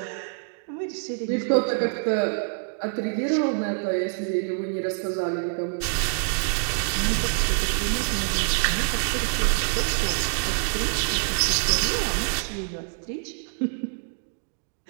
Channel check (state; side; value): silent; left; digital silence